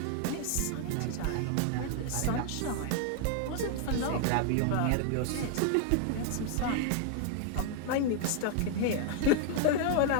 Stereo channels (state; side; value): different; both; correlation 0.00